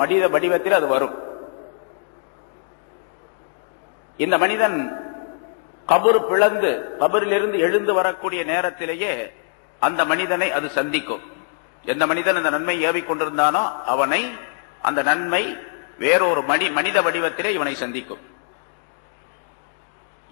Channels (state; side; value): silent; right; digital silence